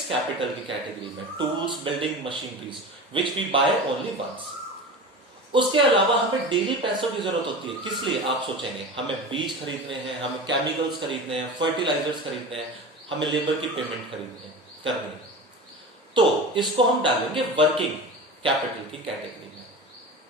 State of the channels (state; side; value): normal; both; correlation 0.31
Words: कैपिटल की कैटेगरी में, tools, building, machineries which we buy only once. उसके अलावा हमें डेली पैसों की जरूरत होती है। किस लिए, आप सोचेंगे, हमें बीज खरीदने हैं, हमें केमिकल्स खरीदने हैं, फर्टिलाइजर्स खरीदने हैं, हमें लेबर की पेमेंट करनी है। तो इसको हम डालेंगे वर्किंग कैपिटल की कैटेगरी में।